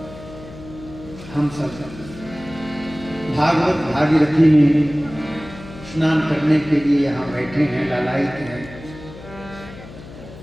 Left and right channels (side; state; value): left; noise; hum, 16 dB below the sound